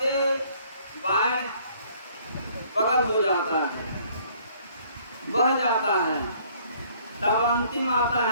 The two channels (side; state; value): both; inverted; correlation -0.60